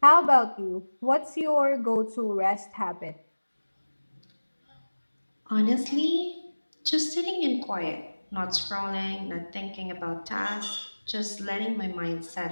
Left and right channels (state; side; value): inverted; both; correlation -1.00